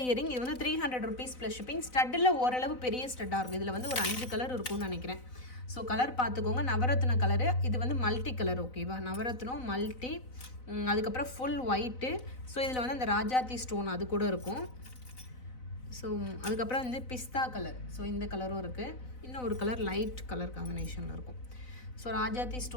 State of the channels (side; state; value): right; late; 4.0 ms